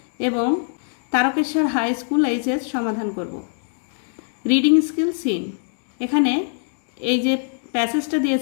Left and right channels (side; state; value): right; silent; 64 dB below the other